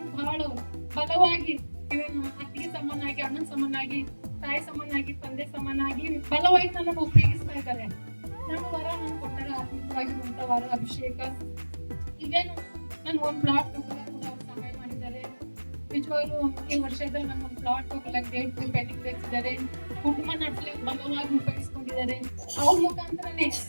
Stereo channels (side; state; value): both; inverted; correlation -1.00